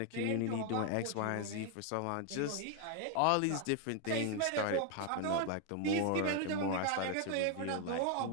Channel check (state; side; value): different; both; correlation 0.01